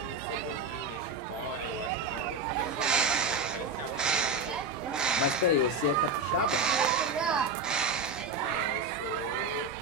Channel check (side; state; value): left; quieter; 3.6 dB